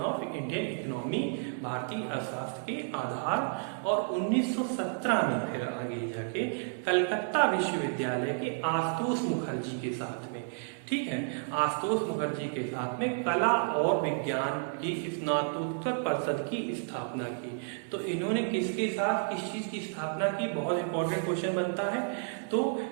of Indian economy, भारतीय अर्थशास्त्र के आधार। और 1917 में फिर आगे जाके कलकत्ता विश्वविद्यालय के आशुतोष मुखर्जी के साथ में ठीक है। आशुतोष मुखर्जी के साथ में कला और विज्ञान की स्नातकोत्तर परिषद की स्थापना की। तो इन्होंने किसके साथ किस चीज की स्थापना की, बहुत इंपॉर्टेंट क्वेश्चन बनता है। तो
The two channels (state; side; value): silent; left; 57 dB below the other